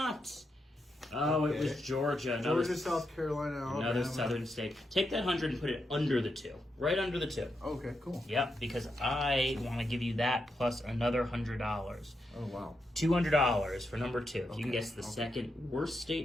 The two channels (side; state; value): both; normal; correlation 0.84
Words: Oh, Okay. it was Georgia. Georgia, South Carolina, Alabama. Another southern state. Take that 100 and put it under the 2. Right under the 2. Okay, cool. Yep, because I want to give you that plus another $100. Oh, wow. $200 for number 2. If you can Okay, guess the 2nd worst